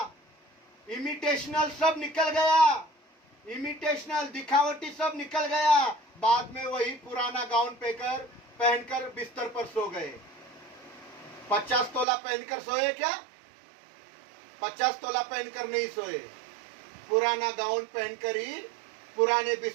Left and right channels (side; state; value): left; drops out; at 12.1 s